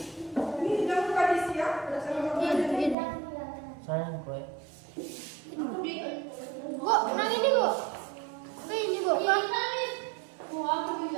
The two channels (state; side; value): drops out; left; at 3.0 s